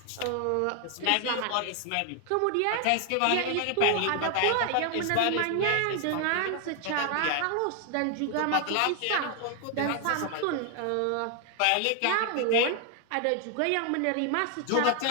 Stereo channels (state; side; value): different; both; correlation 0.00